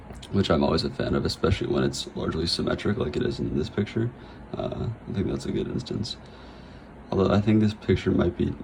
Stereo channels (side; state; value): both; identical; correlation 1.00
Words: which I'm always a fan of, especially when it's largely symmetric like it is in this picture. I think that's a good instance. Although I think this picture might be